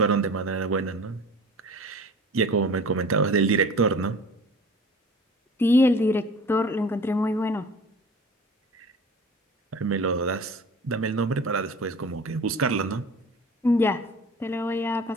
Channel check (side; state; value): both; normal; correlation 0.42